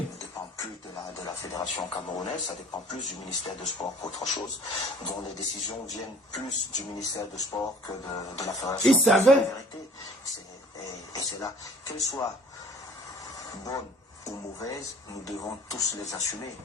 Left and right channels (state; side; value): normal; both; correlation 0.51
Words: dépend plus de la fédération camerounaise, ça dépend plus du ministère de Sport qu'autre chose, dont les décisions viennent plus du ministère de Sport que de la fédération. Il savait. Et c'est là, qu'elles soient bonnes ou mauvaises, nous devons tous les assumer